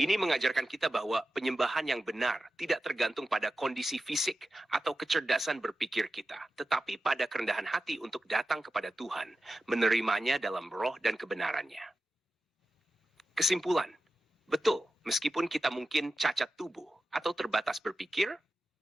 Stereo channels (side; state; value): both; normal; correlation 0.92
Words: mengajarkan kita bahwa penyembahan yang benar tidak tergantung pada kondisi fisik atau kecerdasan berpikir kita, tetapi pada kerendahan hati untuk datang kepada Tuhan, menerimanya dalam roh dan kebenarannya. Kesimpulan, betul, meskipun kita mungkin cacat tubuh atau terbatas berpikir,